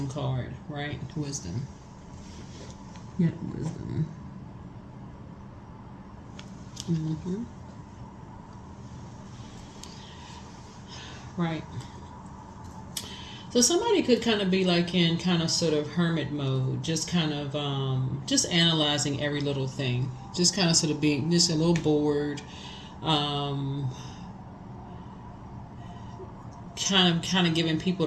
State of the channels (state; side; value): identical; both; correlation 1.00